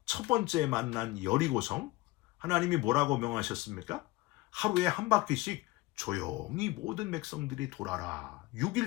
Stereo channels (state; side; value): quieter; right; 20.1 dB